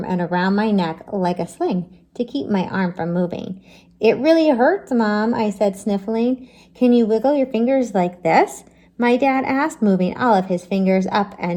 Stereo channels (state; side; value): identical; both; correlation 1.00